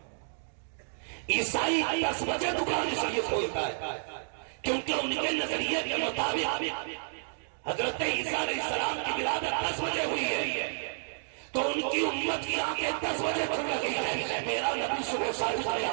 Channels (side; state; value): left; silent; digital silence